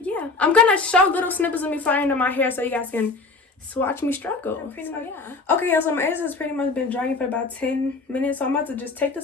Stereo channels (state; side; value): quieter; right; 3.9 dB